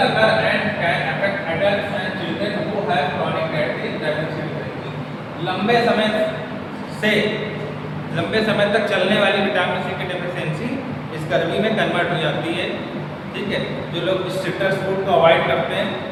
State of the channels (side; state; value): both; identical; correlation 1.00